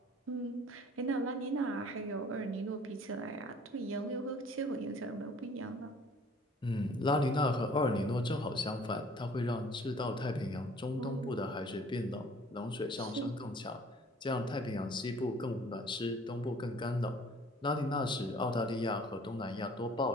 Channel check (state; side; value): normal; both; correlation 0.53